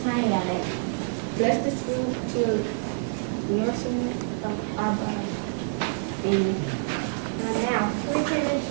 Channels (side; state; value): left; silent; 60 dB below the other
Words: plenty of it. Bless this food to nourishment of our body. Amen. Amen.